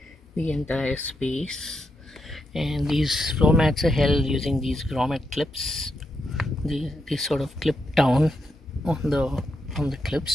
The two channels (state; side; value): normal; both; correlation 0.83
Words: the entire space. And these floor mats are held using these grommet clips. They sort of clip down on the